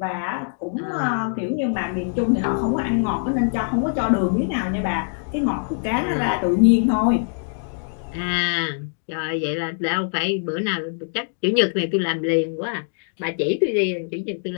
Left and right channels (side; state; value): right; silent; digital silence